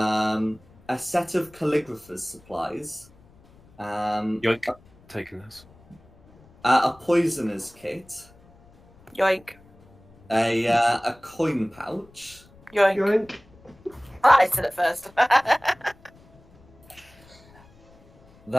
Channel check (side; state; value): left; noise; rumble, 27 dB below the sound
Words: set of calligrapher's supplies, Yoink. Taking this. a poisoner's kit, Yoink. a coin pouch, Yoink. yoink. I said it first.